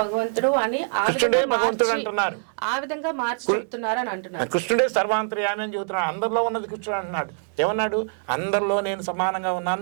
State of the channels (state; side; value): silent; left; 62 dB below the other